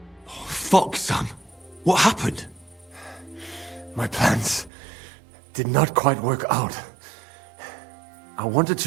Fuck, son. What happened? My plans did not quite work out. I wanted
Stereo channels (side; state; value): left; drops out; at 4.7 s